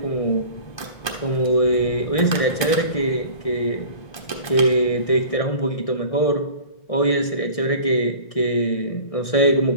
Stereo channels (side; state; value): right; late; 1.2 ms